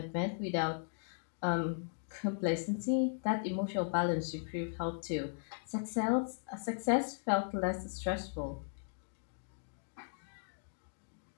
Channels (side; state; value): right; silent; digital silence